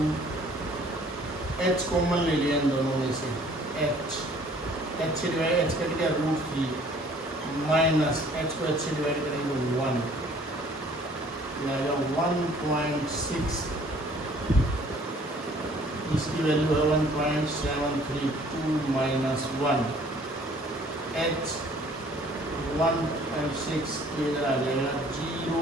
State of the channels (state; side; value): normal; both; correlation 0.56